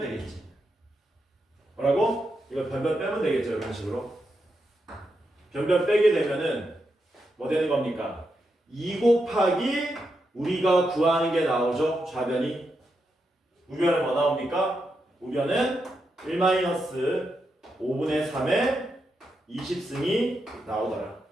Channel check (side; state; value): both; normal; correlation 0.85